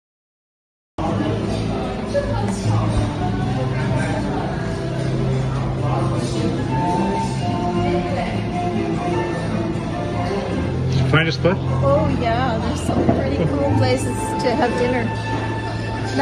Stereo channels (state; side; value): identical; both; correlation 1.00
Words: Find a spot? Oh yeah, there's some pretty cool places to have dinner.